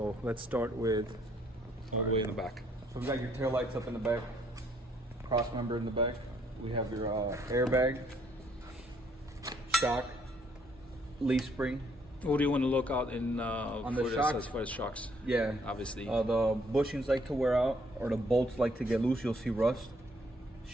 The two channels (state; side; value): normal; both; correlation 0.66